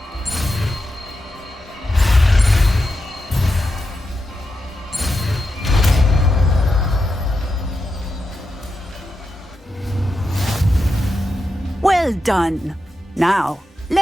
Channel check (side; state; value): both; normal; correlation 0.88